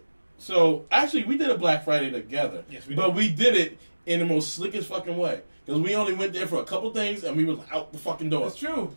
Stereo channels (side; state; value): both; inverted; correlation -1.00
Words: actually we did a Black Friday together. Yes, we But did. we did it in the most slickest fucking way because we only went there for a couple things and we was out the fucking door. That's true.